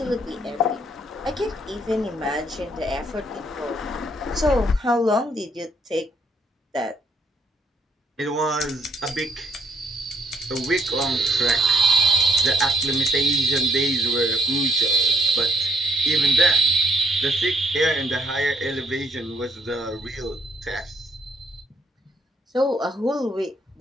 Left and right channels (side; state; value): both; normal; correlation 0.69